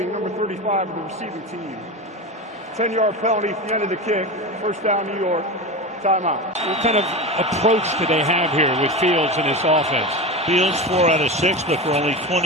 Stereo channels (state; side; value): normal; both; correlation 0.24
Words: number 35 of the receiving team. 10-yard penalty at the end of the kick. First down, New York. Timeout. What kind of approach do they have here with Fields and his offense? Fields 4 out of 6, but for only